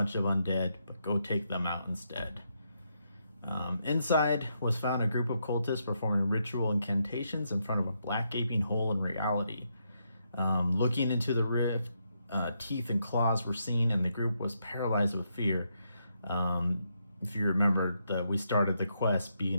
of undead, but go take them out instead. Inside was found a group of cultists performing ritual incantations in front of a black gaping hole in reality. Looking into the rift, teeth and claws were seen, and the group was paralyzed with fear. If you remember, we started the quest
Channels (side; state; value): both; inverted; correlation -0.80